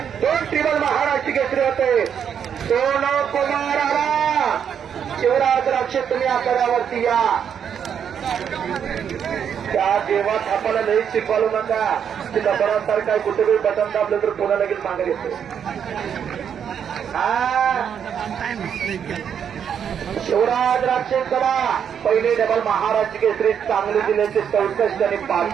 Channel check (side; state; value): left; quieter; 8.1 dB